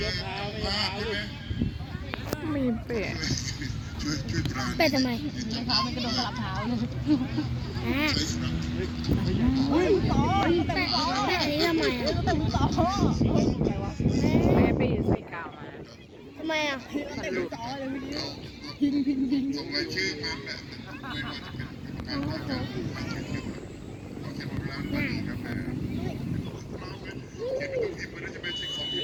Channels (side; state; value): both; identical; correlation 1.00